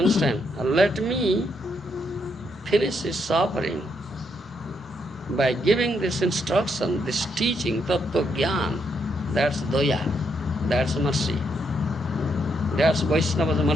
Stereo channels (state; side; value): normal; both; correlation 0.77